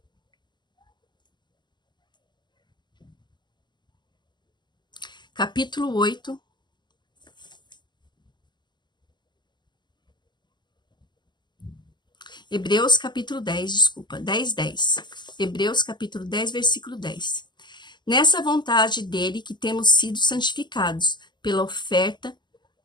Capítulo 8. Hebreus capítulo 10, desculpa, 10. Hebreus capítulo 10, versículo 10. Nessa vontade dele que temos sido santificados pela oferta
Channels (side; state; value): right; late; 0.21 ms